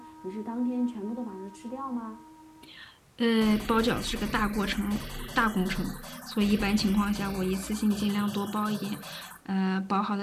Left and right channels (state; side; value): identical; both; correlation 1.00